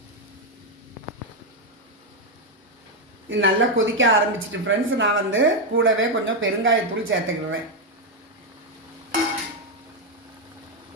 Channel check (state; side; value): normal; both; correlation 0.04